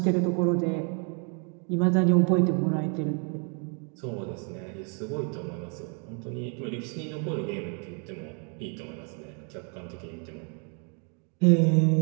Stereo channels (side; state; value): left; quieter; 38.6 dB